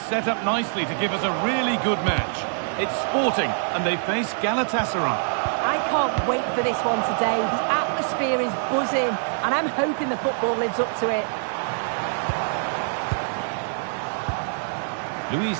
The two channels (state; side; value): silent; left; digital silence